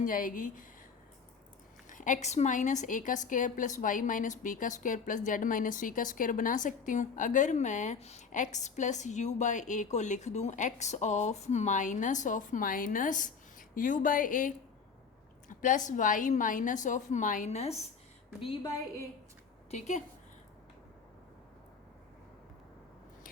जाएगी, एक्स माइनस ए का square plus Y minus B का square plus Z minus C का स्क्वायर बना सकती हूँ। अगर मैं X plus U by A को लिख दूँ X of minus U by A plus Y minus of minus B by A. ठीक है,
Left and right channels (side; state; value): right; quieter; 5.7 dB